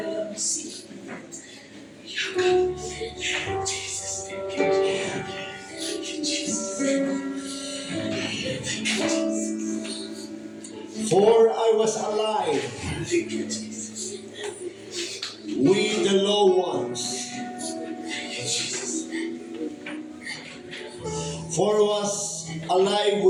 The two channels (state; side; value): identical; both; correlation 1.00